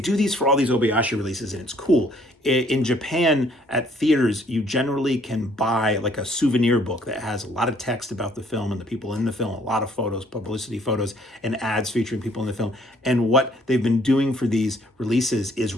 these for all these Obayashi releases, and it's cool. In Japan, at theaters, you generally can buy like a souvenir book that has a lot of text about the film and the people in the film, a lot of photos, publicity photos, and ads featuring people in the film. And what they've been doing for these releases is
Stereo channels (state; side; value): normal; both; correlation 0.62